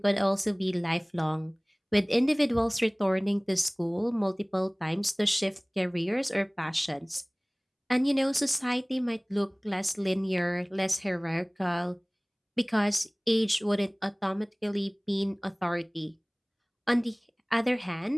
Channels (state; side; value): identical; both; correlation 1.00